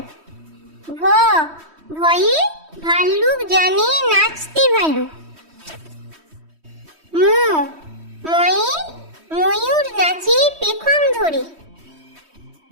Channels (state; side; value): late; left; 3.1 ms